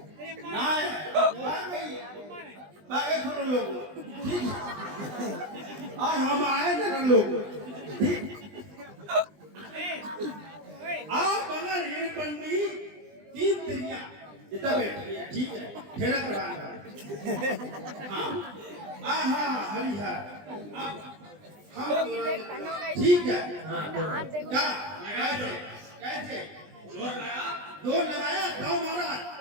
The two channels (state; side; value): late; left; 20 ms